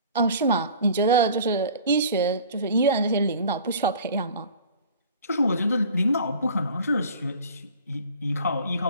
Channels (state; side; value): inverted; both; correlation -0.45